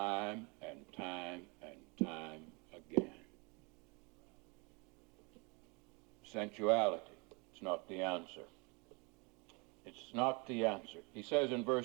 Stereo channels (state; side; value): quieter; left; 29.6 dB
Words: and time and time again. Sensuality. It's not the answer. It's not the answer. He says in